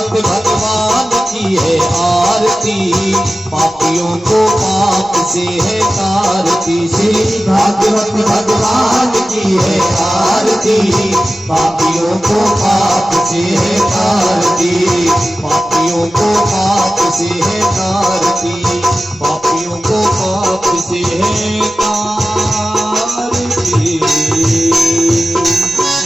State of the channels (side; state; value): right; noise; rumble, 27 dB below the sound